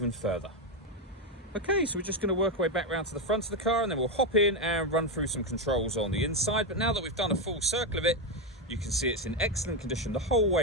further. Okay, so we're just going to work our way back round to the front of the car, and then we'll hop in and run through some controls on the inside. But now that we've done a full circle of it, you can see it's in excellent condition the whole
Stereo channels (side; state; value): both; normal; correlation 0.07